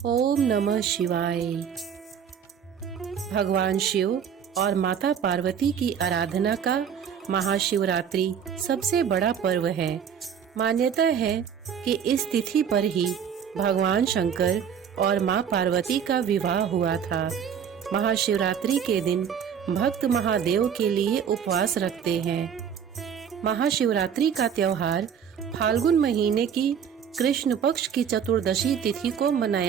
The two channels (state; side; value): quieter; left; 7.9 dB